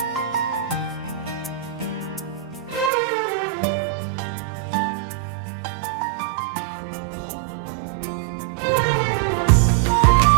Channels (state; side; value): drops out; left; at 2.9 s